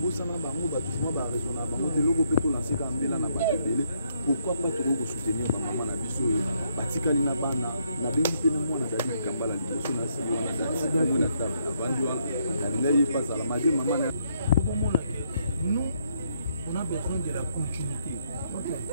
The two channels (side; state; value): both; inverted; correlation -0.73